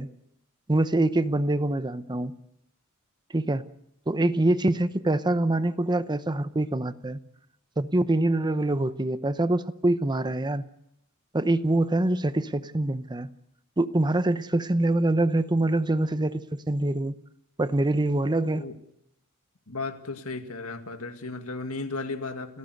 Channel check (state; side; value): normal; both; correlation 0.84